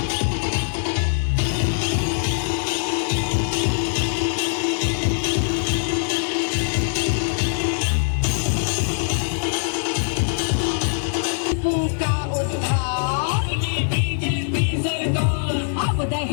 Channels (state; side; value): silent; right; 64 dB below the other